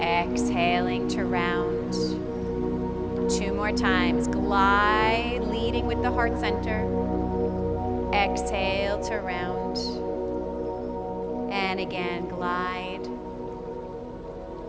to round. 2 more times. Glide, leading with the heart center. Exhale to round. And again, glide.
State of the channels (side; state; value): both; identical; correlation 1.00